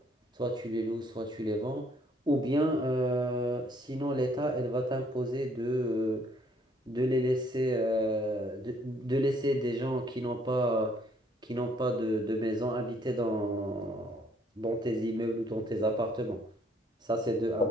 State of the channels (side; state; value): both; normal; correlation 0.65